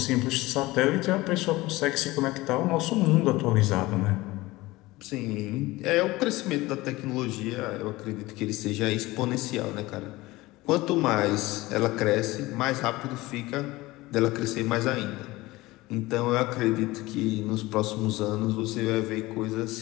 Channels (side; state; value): right; quieter; 19.8 dB